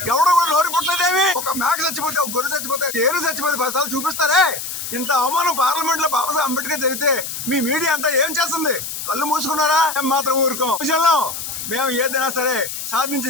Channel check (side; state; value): left; noise; hiss, 6 dB below the sound